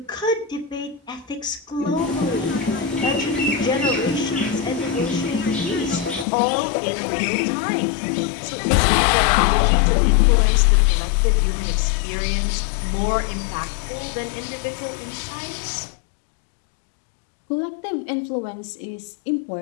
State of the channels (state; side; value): drops out; right; at 6.2 s